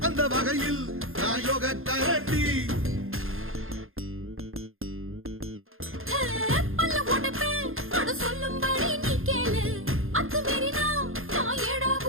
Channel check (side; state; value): left; late; 0.60 ms